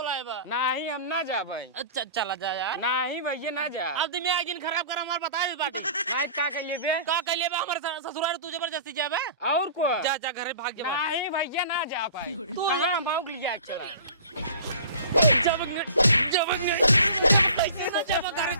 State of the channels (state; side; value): inverted; both; correlation -0.43